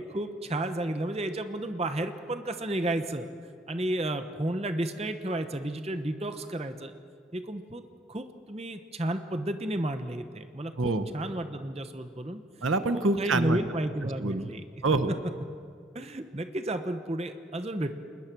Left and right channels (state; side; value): normal; both; correlation 0.63